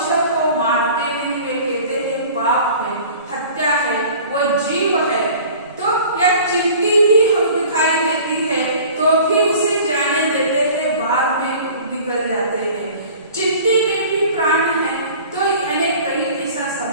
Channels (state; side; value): inverted; both; correlation -0.45